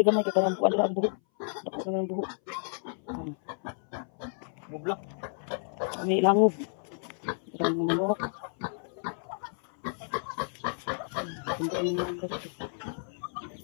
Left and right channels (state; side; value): silent; right; 57 dB below the other